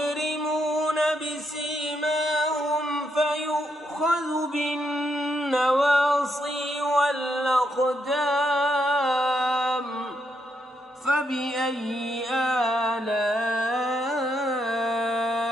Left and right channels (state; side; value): normal; both; correlation 0.79